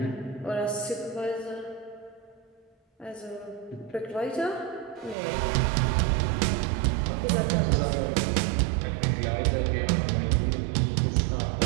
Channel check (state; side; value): drops out; left; at 5.2 s